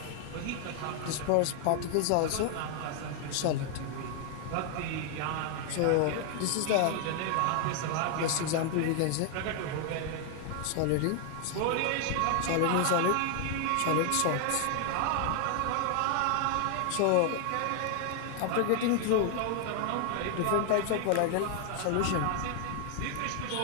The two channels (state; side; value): different; both; correlation 0.00